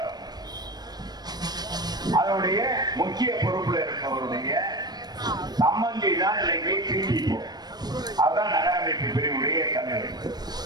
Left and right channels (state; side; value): late; left; 0.19 ms